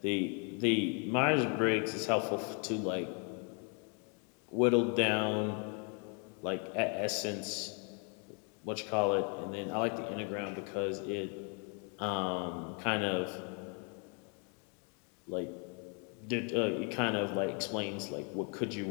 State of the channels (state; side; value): quieter; right; 37.7 dB